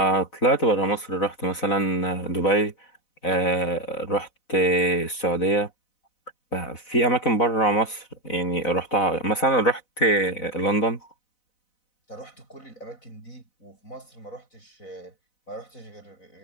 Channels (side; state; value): right; late; 4.0 ms